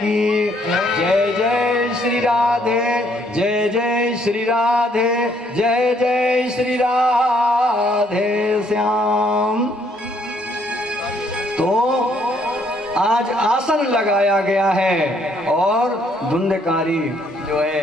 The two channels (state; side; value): normal; both; correlation 0.67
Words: जय। जय श्री राधे, जय जय श्री राधे, जय जय श्री राधे श्याम। तो आज आसन लगाया गया है और धुंधकारी जो